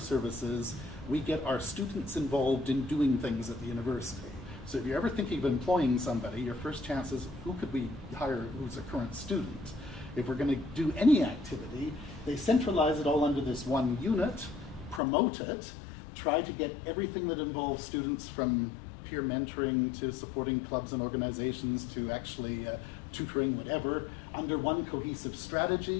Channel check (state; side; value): drops out; right; at 15.0 s